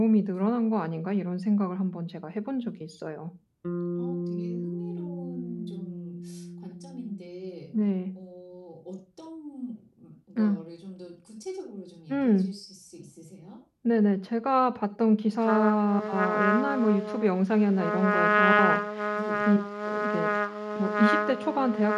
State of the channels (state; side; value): identical; both; correlation 1.00